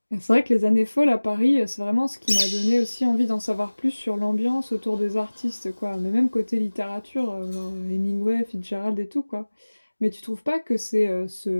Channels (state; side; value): inverted; both; correlation -1.00